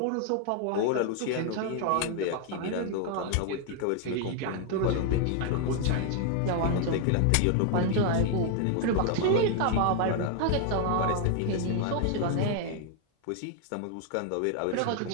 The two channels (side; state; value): both; different; correlation 0.00